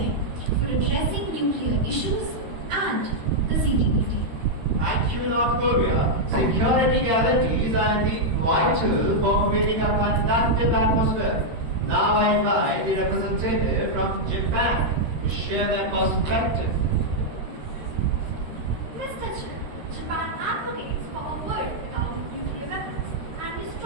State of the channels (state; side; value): late; left; 13 ms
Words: for addressing nuclear issues and the CTBT. Thank you, North Korea. Security guarantees are indeed vital for creating a conducive atmosphere. Now I invite the representative from Japan to share their perspective. Mr. Chair, Japan advocates for a world without nuclear weapons, and we